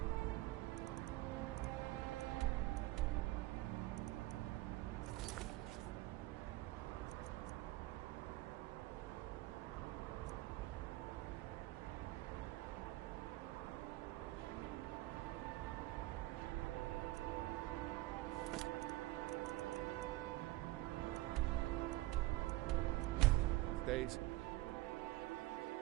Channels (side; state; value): left; quieter; 18.4 dB